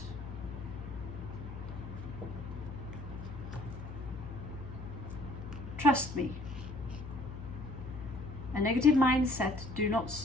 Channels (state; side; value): noise; left; hum, 9 dB below the sound